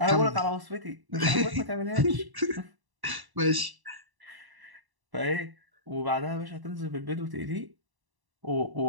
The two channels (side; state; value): left; late; 1.1 ms